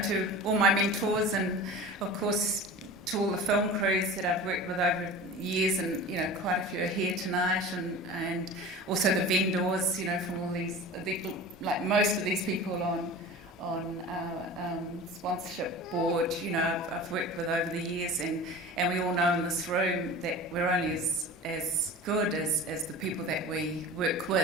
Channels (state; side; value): normal; both; correlation 0.36